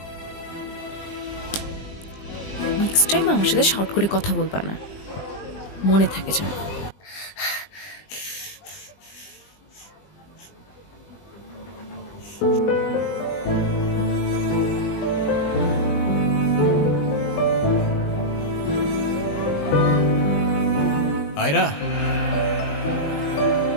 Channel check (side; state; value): right; late; 20 ms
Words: নেক্সট টাইম আমার সাথে শর্ট করে কথা বলবা না, মনে থাকে যেন। আয়রা,